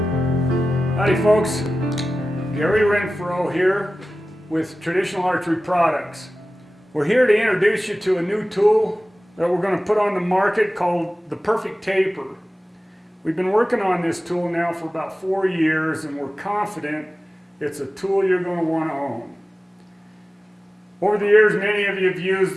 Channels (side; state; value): both; normal; correlation 0.96